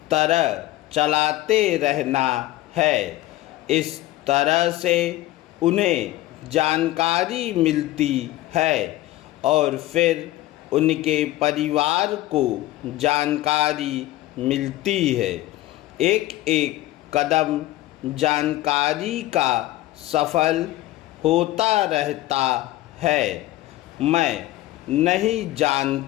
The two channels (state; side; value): quieter; right; 16.3 dB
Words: तरह चलाते रहना है। इस तरह से उन्हें जानकारी मिलती है और फिर उनके परिवार को जानकारी मिलती है। एक एक कदम जानकारी का सफल होता रहता है। मैं नहीं